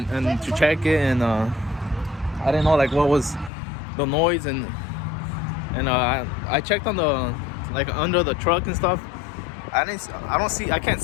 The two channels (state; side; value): drops out; right; at 3.5 s